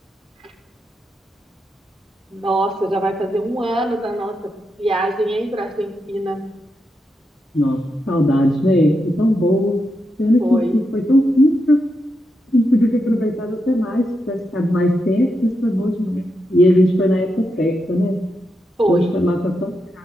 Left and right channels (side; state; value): both; normal; correlation 0.85